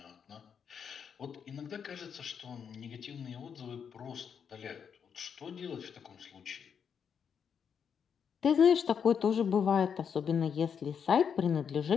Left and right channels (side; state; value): right; quieter; 7.2 dB